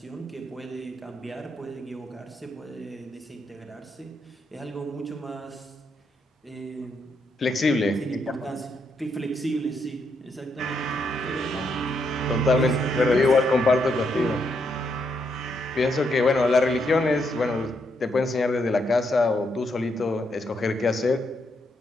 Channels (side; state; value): both; normal; correlation 0.78